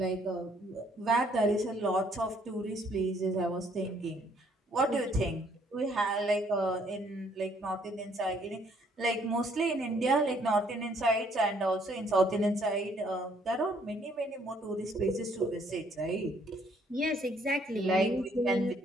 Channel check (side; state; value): both; normal; correlation 0.65